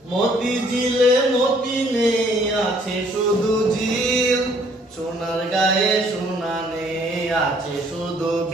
মতি ঝিলে মতি নেই, আছে শুধু ঝিল। সোনার গায়ে সোনা নেই, আছে শুধু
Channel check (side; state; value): both; normal; correlation 0.62